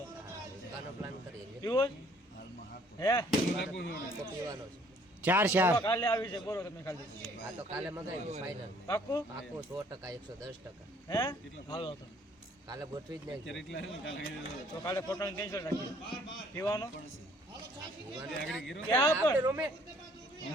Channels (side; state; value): both; normal; correlation 0.60